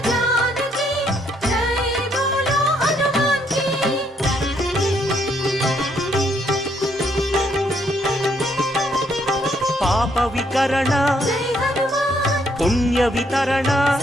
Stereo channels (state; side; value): normal; both; correlation 0.71